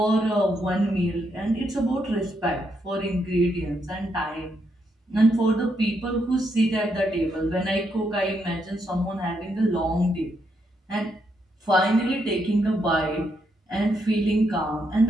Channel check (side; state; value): both; normal; correlation 0.79